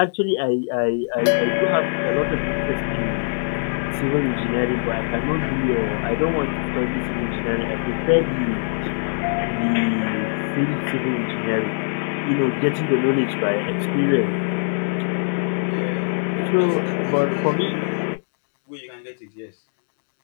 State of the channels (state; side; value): silent; right; digital silence